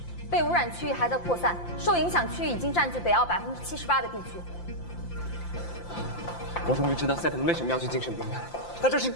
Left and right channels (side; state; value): right; late; 5.8 ms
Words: 被污染区域还在扩散，受影响区域已经占据北澳78%的地区。我终于知道赛特为什么要去精神病院，他这是